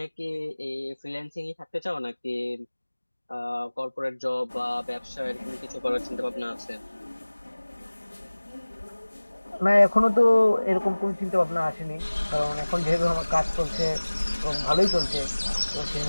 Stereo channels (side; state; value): both; inverted; correlation -1.00